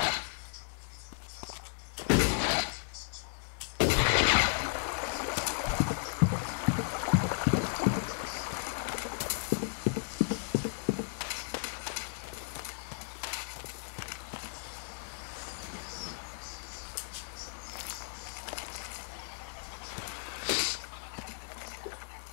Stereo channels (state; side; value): silent; right; digital silence